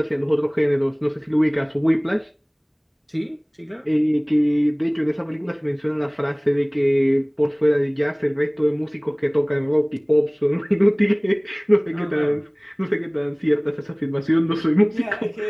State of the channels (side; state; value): both; identical; correlation 1.00